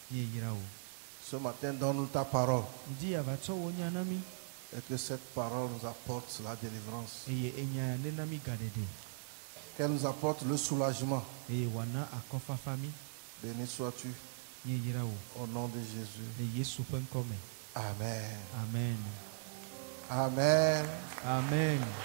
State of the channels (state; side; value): silent; left; digital silence